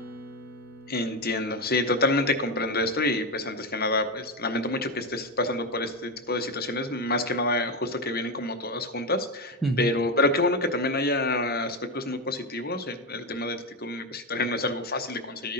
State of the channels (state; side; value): normal; both; correlation 0.12